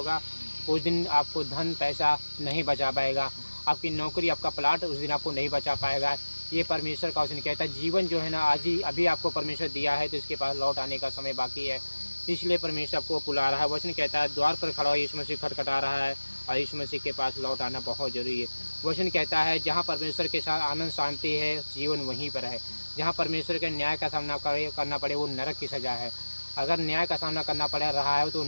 उस दिन आपको धन पैसा नहीं बचा पाएगा, आपकी नौकरी आपका प्लाट उस दिन आपको नहीं बचा पाएगा। ये परमेश्वर का वचन कहता है। जीवन जो है ना आज ही अभी आपको परमेश्वर दिया है तो इसके पास लौट आने का समय बाकी है, इसलिए परमेश्वर आपको बुला रहा है। वचन कहता है द्वार पर खड़ा हो यीशु मसीह खटखटा रहा है और यीशु मसीह के पास लौट आना बहुत जरूरी है। वचन कहता है जहाँ परमेश्वर के साथ आनंद शांति है जीवन वहीं पर है। जहाँ परमेश्वर के न्याय का सामना करना पड़े वो नरक की सज़ा है। अगर न्याय का सामना करना पड़ रहा है तो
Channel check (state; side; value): inverted; both; correlation -1.00